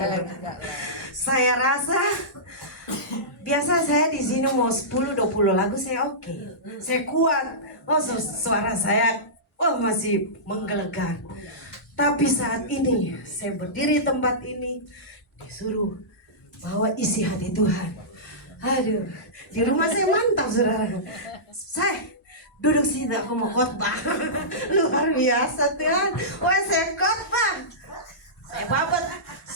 Saya rasa biasa saya di sini mau 10-20 lagu saya oke. Saya kuat. Oh, suara saya masih menggelegar. Tapi saat ini saya berdiri di tempat ini disuruh bawa isi hati Tuhan. Aduh, di rumah saya mantap saudara. Saya duduk sini aku mau khotbah. Luar biasa Tuhan. Wah, saya khotbah.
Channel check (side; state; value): both; normal; correlation -0.18